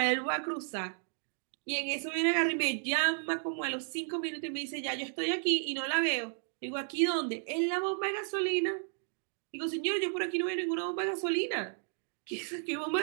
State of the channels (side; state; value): left; silent; 56 dB below the other